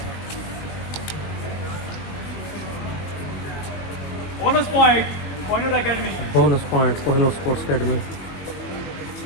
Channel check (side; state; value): right; late; 20 ms